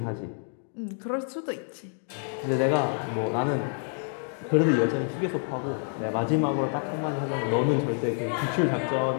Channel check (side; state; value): right; silent; 59 dB below the other